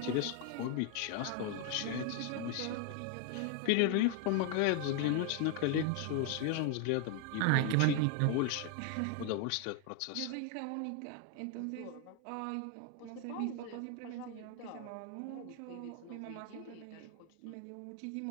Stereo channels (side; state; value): both; different; correlation 0.00